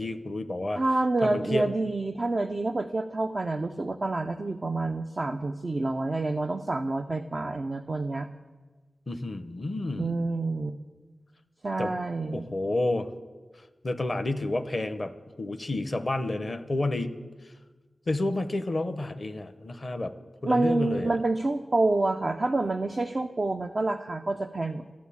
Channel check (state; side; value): normal; both; correlation 0.95